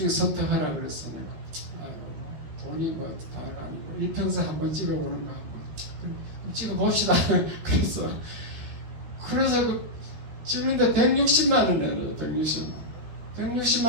선택하라 그랬어요. 돈이 뭐 다 아니고 일평생 한번 찍어보는 거 한번 찍어봅시다. 그래서 그 찍는데 160만 원 내요. 160만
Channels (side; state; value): left; late; 13 ms